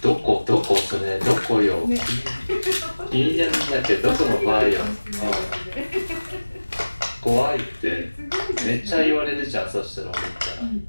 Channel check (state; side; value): inverted; both; correlation -1.00